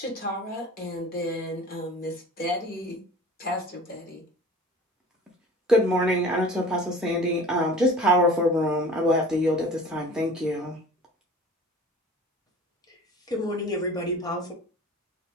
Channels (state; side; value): normal; both; correlation 0.42